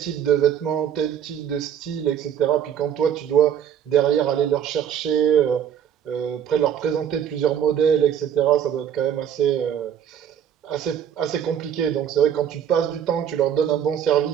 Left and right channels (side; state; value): left; quieter; 9.1 dB